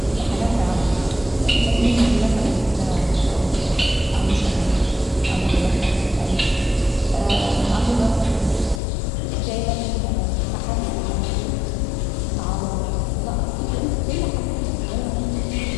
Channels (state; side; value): drops out; right; at 8.8 s